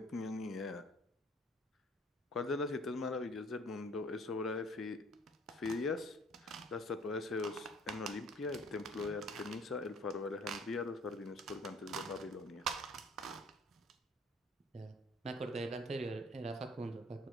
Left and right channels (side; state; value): both; normal; correlation 0.54